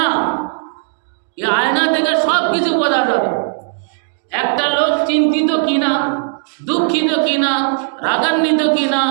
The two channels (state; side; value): silent; left; digital silence